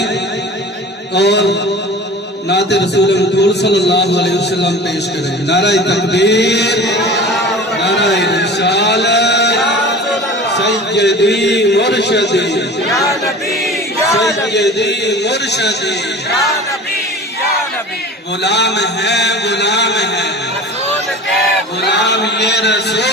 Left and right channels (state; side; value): normal; both; correlation 0.38